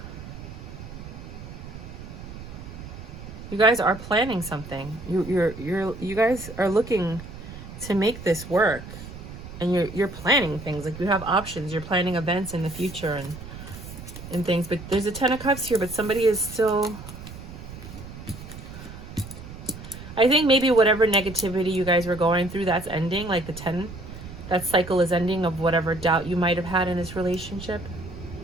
You guys are planning something. You guys are looking to make this work, and you're planning things. Like, you have options. You're planning events in the future and things. But there's a 10 of Cups here, but somebody is still... I think maybe whatever negativity you guys were going through, that's ending. Like the 10, that cycle is ending of whatever doubt you might have had in this relationship.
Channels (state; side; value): noise; right; rumble, 13 dB below the sound